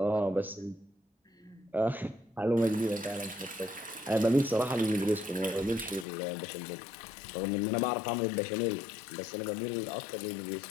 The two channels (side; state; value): right; drops out; at 6.1 s